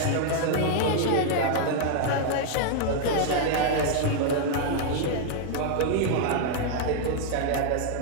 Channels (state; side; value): different; both; correlation 0.00